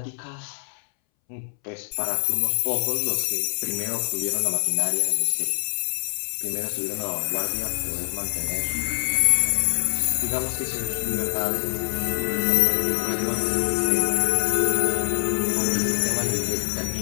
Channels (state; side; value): silent; right; 62 dB below the other